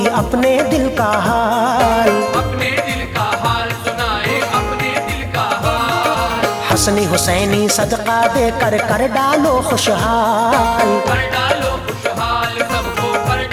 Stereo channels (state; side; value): identical; both; correlation 1.00